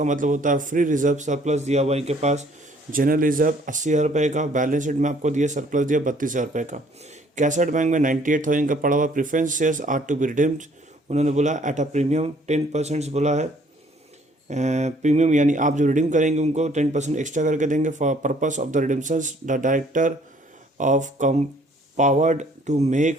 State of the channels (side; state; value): both; normal; correlation 0.60